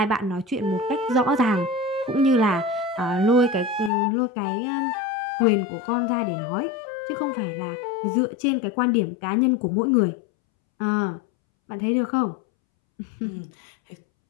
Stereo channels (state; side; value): drops out; right; at 3.9 s